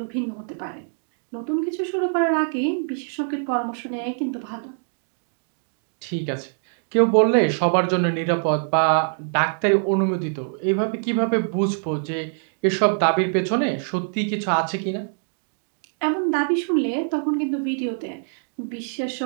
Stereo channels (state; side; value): silent; left; digital silence